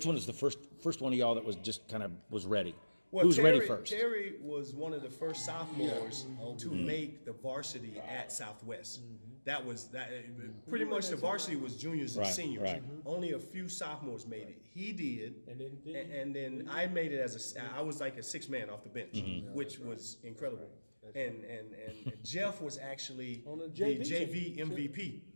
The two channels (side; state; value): both; inverted; correlation -1.00